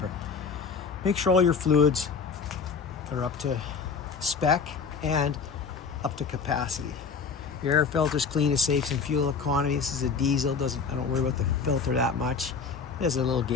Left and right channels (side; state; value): right; quieter; 5.5 dB